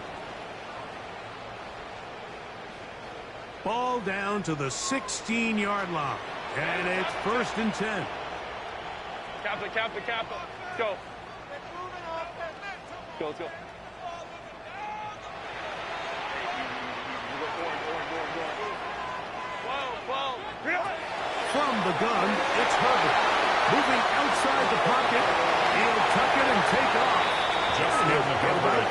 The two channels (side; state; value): both; identical; correlation 1.00